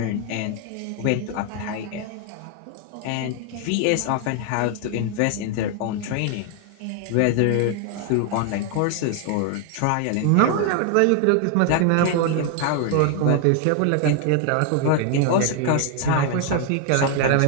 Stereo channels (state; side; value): different; both; correlation 0.00